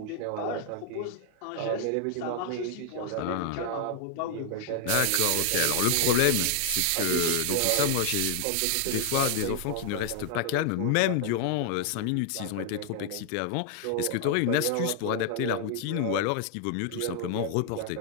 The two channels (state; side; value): different; both; correlation 0.00